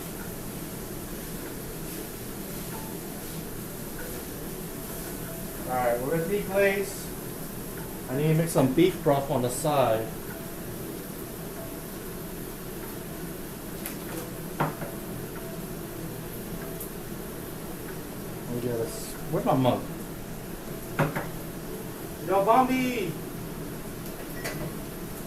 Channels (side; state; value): both; identical; correlation 1.00